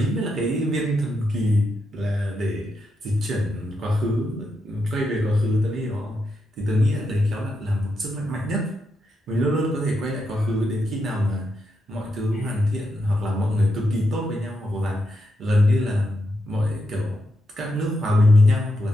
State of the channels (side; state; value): both; normal; correlation 0.83